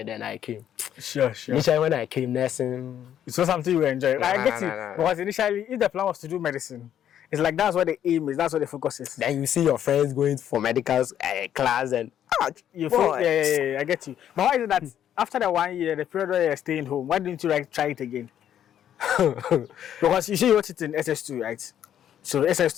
then I came. Sure. Initially when I came nursing. It was something you enjoy. I get it. Because initially, if the plan was to do medicine, it's like that's what the aim is, that's what the focus is. Then you see your friends going for medical class and I get you. But why is it that after the 1 year, the period where you're staying home, why didn't you try it again? Because you see you wrote it in SS2, right? So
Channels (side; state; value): right; quieter; 10.2 dB